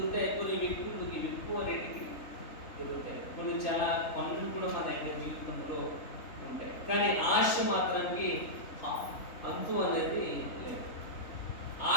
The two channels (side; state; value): right; late; 3.5 ms